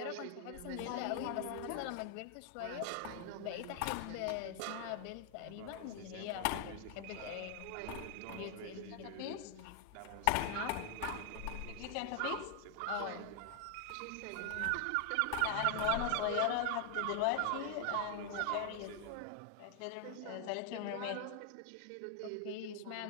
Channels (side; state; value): both; different; correlation 0.00